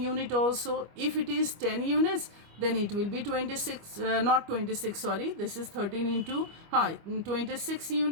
unit also. If it is 10 units, then it will be 26, not 26, sorry, this is 13 into 26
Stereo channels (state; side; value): late; left; 25 ms